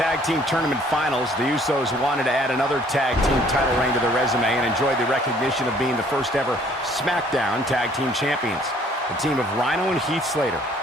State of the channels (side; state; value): both; normal; correlation 0.59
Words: team tournament finals. The Usos wanted to add another tag team title reign to their resume and enjoyed the recognition of being the first ever SmackDown Tag Team Champions. The team of Rhino and Heath Slater